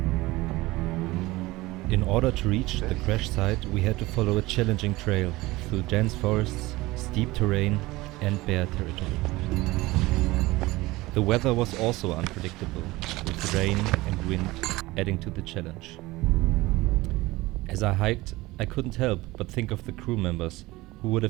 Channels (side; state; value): left; quieter; 19.9 dB